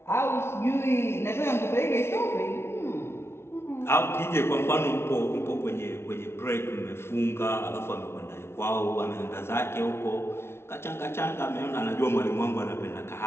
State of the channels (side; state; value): right; late; 0.12 ms